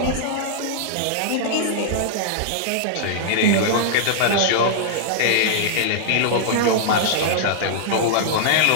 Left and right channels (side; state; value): both; different; correlation -0.02